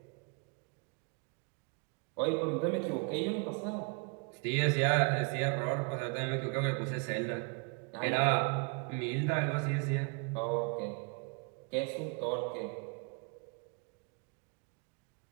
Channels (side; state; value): left; quieter; 34.5 dB